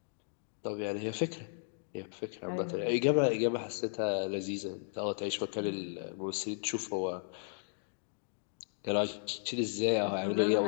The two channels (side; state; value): right; silent; digital silence